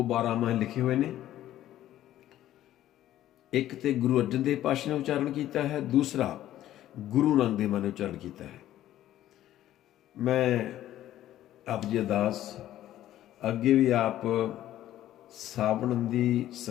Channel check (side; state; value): right; quieter; 13.1 dB